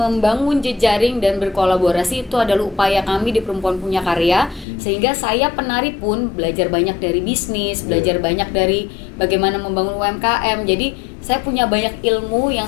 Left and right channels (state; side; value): drops out; right; at 4.7 s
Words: jejaring dan berkolaborasi itu adalah upaya kami di Perempuan Punya Karya. Sehingga saya penari pun belajar banyak dari bisnis, belajar banyak dari bagaimana membangun UMKM. Jadi saya punya banyak ilmu